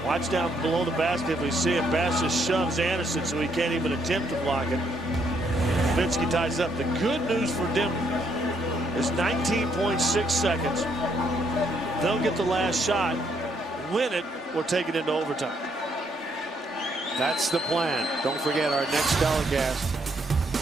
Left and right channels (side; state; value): both; normal; correlation 0.72